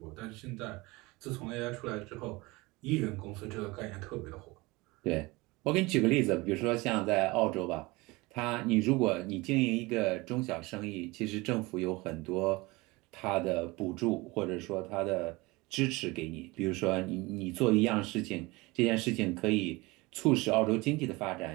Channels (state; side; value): quieter; left; 23.1 dB